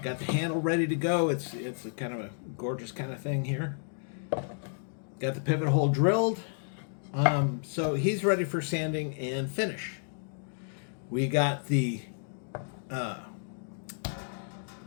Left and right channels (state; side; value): silent; right; digital silence